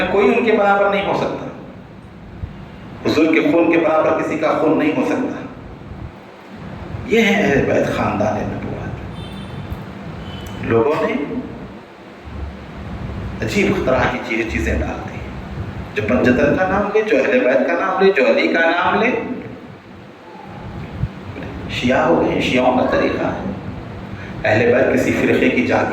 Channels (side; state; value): both; identical; correlation 1.00